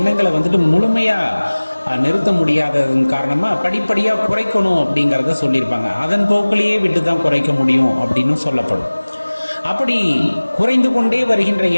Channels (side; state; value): both; inverted; correlation -1.00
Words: வந்துட்டு முழுமையா நிறுத்த முடியாததன் காரணமா படிப்படியா குறைக்கணும் அப்படிங்கிறத சொல்லியிருப்பாங்க. அதன் போக்கிலேயே விட்டு தான் குறைக்க முடியும் அப்படின்னு சொல்லப்படும். அப்படி குறைந்து கொண்டே வருகின்ற